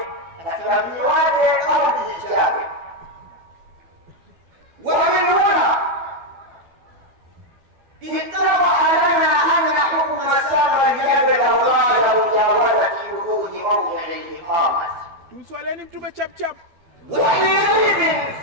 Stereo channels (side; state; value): left; late; 12 ms